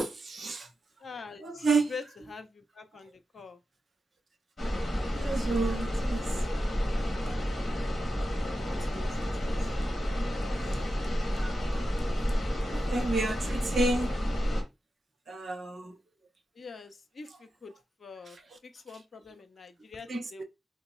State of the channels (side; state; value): both; normal; correlation 0.90